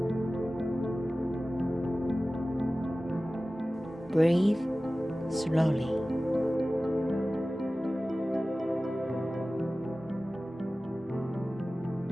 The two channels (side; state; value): both; normal; correlation 0.96